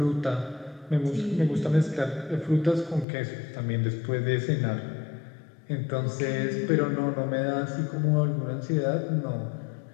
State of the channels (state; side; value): drops out; right; at 3.1 s